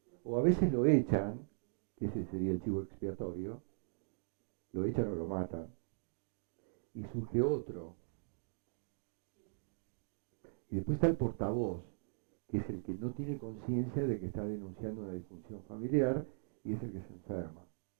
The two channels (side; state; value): left; silent; digital silence